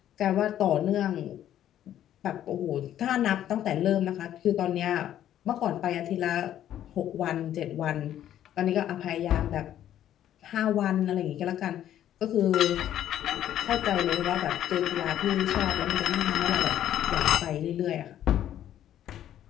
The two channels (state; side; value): quieter; right; 11.4 dB